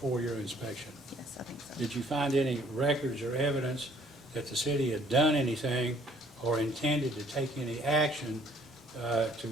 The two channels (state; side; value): normal; both; correlation 0.61